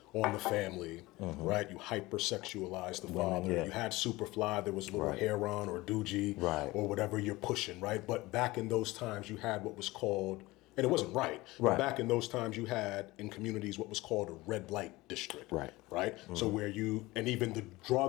on the family, right? You hypersexualize the father. Yeah. You had Superfly, there was Little Heron or Doogie or whatever you're pushing, right? But back in those times, you had what was called, and it wasn't right, but back in those times, you had in communities what was called a red light district, right? So where and even the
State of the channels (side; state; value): right; quieter; 20.3 dB